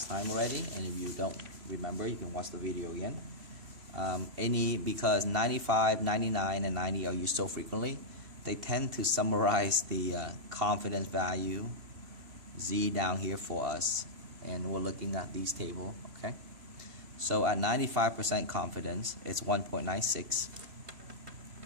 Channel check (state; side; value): late; left; 3.0 ms